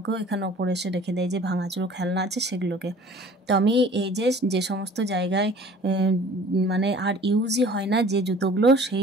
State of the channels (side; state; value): both; normal; correlation 0.48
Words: এখানে ওপরে এসে রেখে দেয়, যে ভাঙাচুরো খেলনা আছে সেগুলোকে। তো আমি এই যে সমস্ত জায়গায় আর ইউজই হয় না যে জুতোগুলো, সেই